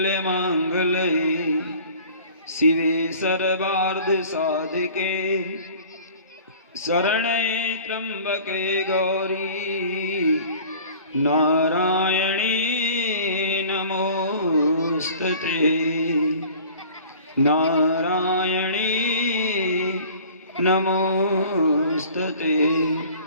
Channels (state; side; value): inverted; both; correlation -0.46